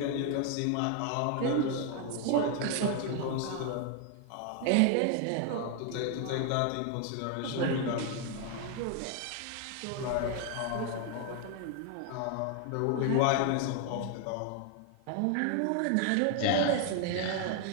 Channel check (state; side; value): different; both; correlation 0.01